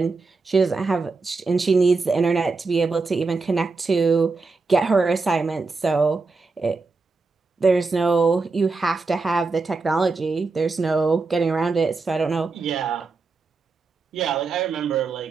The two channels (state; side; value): quieter; left; 4.0 dB